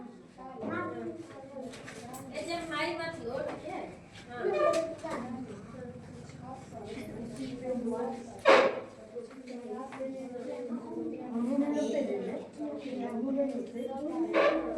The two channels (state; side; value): identical; both; correlation 1.00